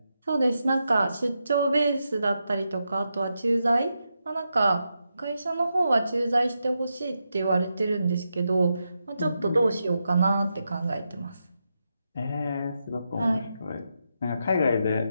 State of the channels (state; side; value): inverted; both; correlation -0.86